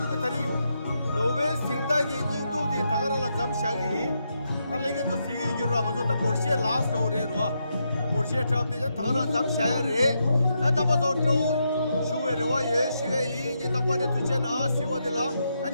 다리 노베 생다기 인도디 다가라라 잠샤기 칼레게 또 시기 기로라 가서 다 포르시에 라스트 오레로아 포르시에 트랍데 다가라 잠샤야레 나다바도 또 슈에로와 예시에 이니 딱바데 투체나 시와데라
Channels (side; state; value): both; inverted; correlation -0.81